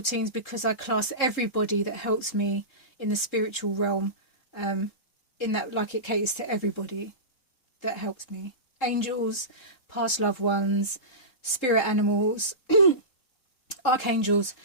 teams because I class everybody that helps me in the spiritual realm, in that, like, it caters to everybody that helps me. Angels, past loved ones, spirit animals, archangels,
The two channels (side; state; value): right; late; 3.7 ms